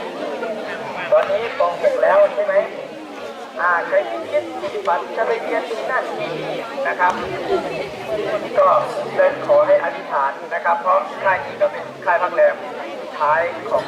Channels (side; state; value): both; identical; correlation 1.00